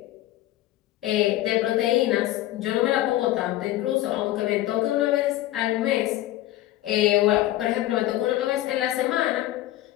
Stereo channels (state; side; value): quieter; right; 15.1 dB